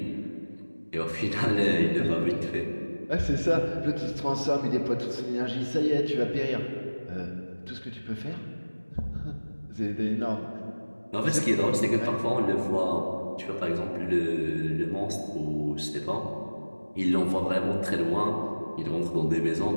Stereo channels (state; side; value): inverted; both; correlation -1.00